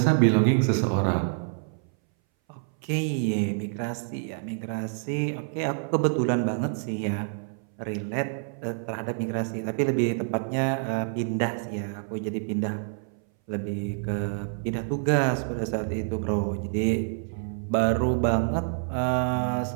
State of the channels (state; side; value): silent; left; 59 dB below the other